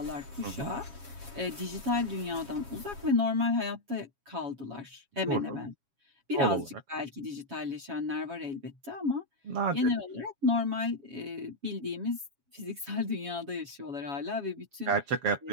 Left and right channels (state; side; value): late; left; 7.2 ms